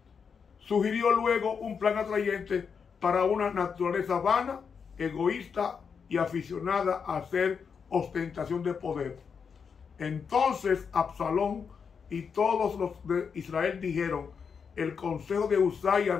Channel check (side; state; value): right; quieter; 6.2 dB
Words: Sugirió luego un plan atrayente para una naturaleza vana, egoísta y aficionada a hacer ostentación de poder. Entonces Absalón y todos los de Israel dijeron, el consejo de Husai